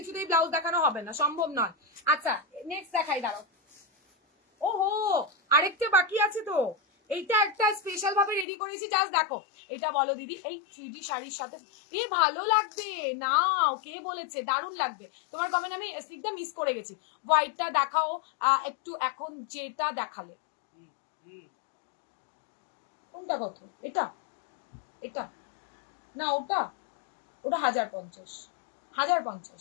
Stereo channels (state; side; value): drops out; right; at 8.5 s